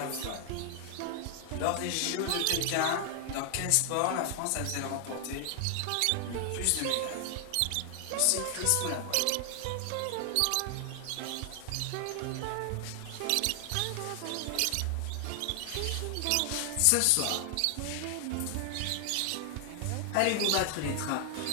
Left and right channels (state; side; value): different; both; correlation 0.00